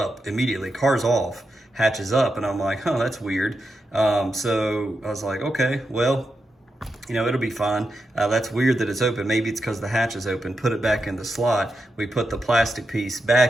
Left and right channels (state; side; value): normal; both; correlation 0.87